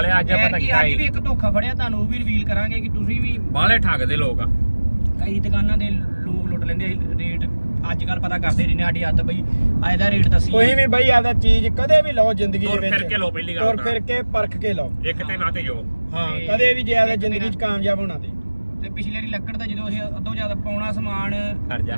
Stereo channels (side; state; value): both; inverted; correlation -1.00